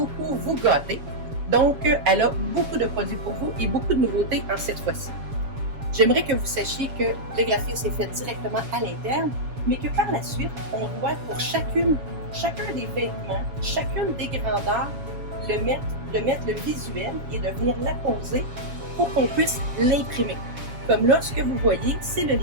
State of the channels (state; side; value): late; left; 7.3 ms